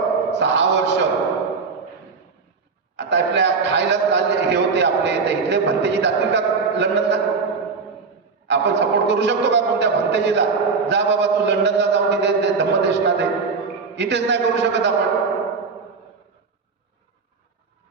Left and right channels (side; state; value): left; quieter; 4.8 dB